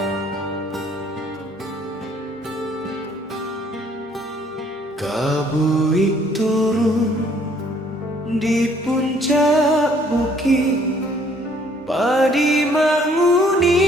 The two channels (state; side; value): normal; both; correlation 0.62